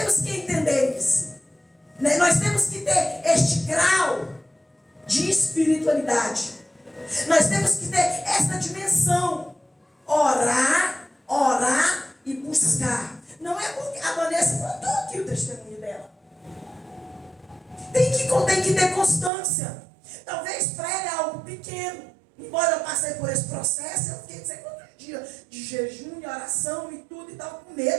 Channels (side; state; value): left; drops out; at 19.3 s